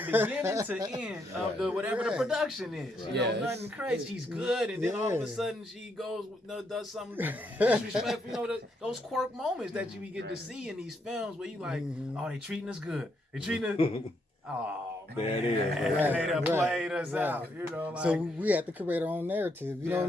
beginning to end of the whatever the production is. Right. You know, nothing crazy. She's good, and then all of a sudden she goes, does something disrespectful. You know, those quirk moments that you get to see in these films where you like, oh, they treating us good. They treating us. Oh man, there it is. They done played us out. You know, like, so we have to create our own narrative. You know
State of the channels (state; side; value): normal; both; correlation 0.76